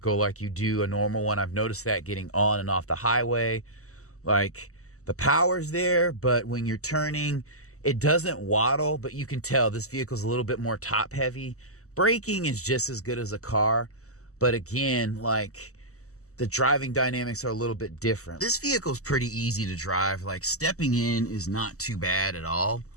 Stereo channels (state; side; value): late; right; 0.65 ms